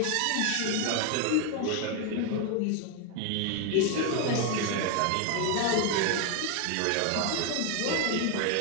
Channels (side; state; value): both; different; correlation 0.01